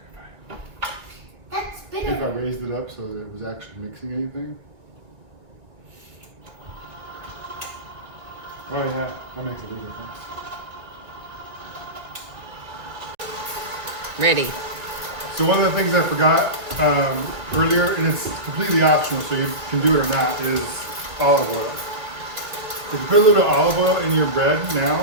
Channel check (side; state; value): left; late; 3.0 ms